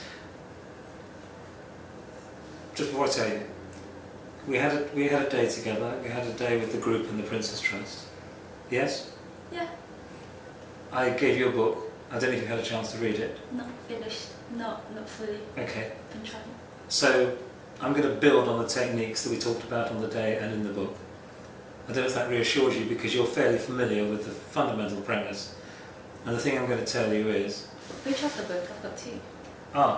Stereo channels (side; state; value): both; identical; correlation 1.00